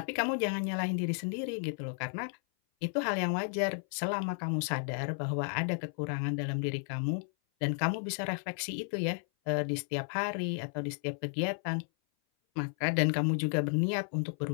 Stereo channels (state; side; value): silent; right; 56 dB below the other